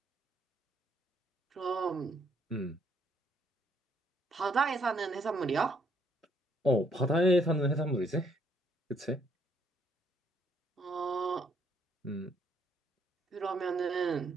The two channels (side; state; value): both; normal; correlation 0.70